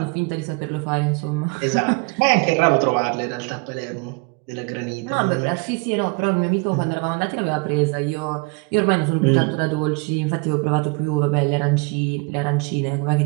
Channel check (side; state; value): left; quieter; 30.7 dB